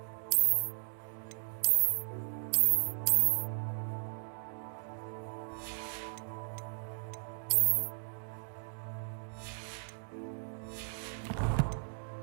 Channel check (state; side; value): silent; left; digital silence